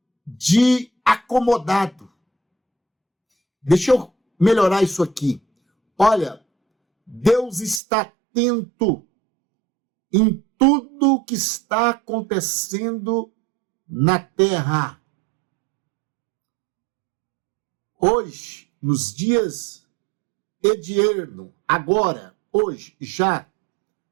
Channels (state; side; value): drops out; left; at 7.8 s